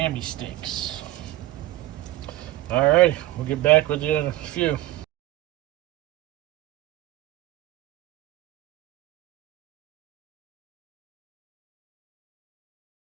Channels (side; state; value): left; quieter; 15.7 dB